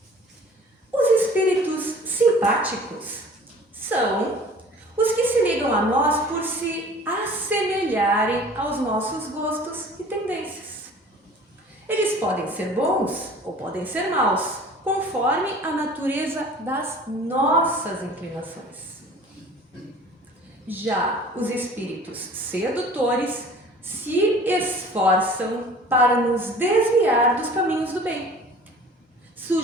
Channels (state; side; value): normal; both; correlation 0.46